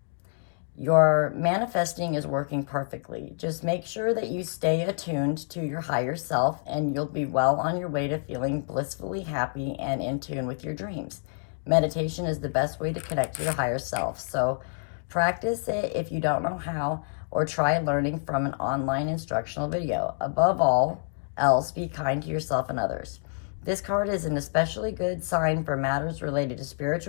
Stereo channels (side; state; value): right; silent; 60 dB below the other